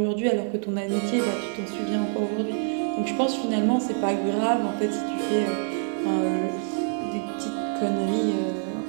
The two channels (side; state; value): left; silent; 60 dB below the other